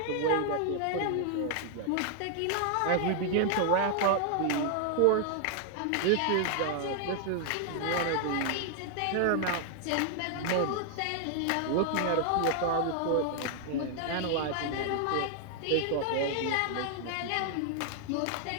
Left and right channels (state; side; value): different; both; correlation 0.00